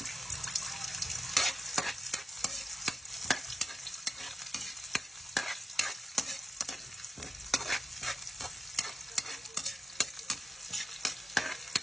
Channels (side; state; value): both; normal; correlation 0.88